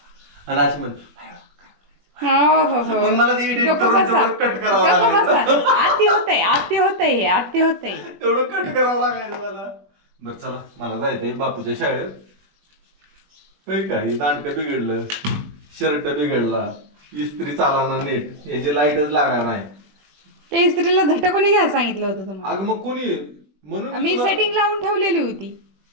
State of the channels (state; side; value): late; left; 20 ms